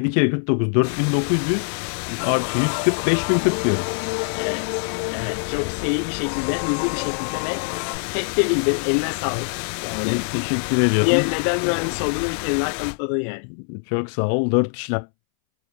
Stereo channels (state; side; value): silent; right; 63 dB below the other